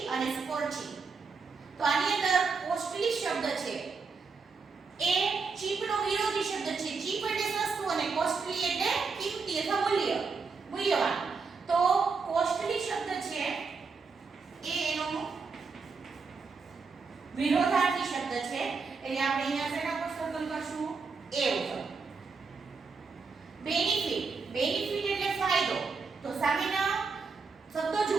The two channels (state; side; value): quieter; left; 4.8 dB